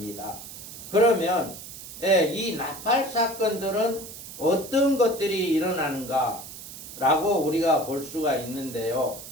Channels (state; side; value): noise; right; hiss, 13 dB below the sound